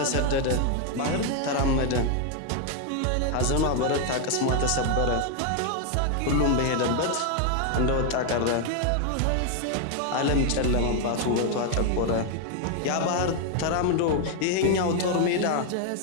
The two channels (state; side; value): different; both; correlation 0.01